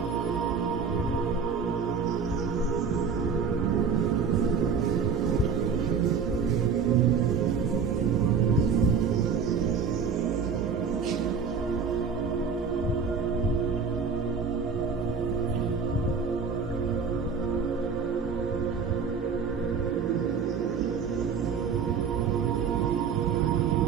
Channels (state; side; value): quieter; left; 5.9 dB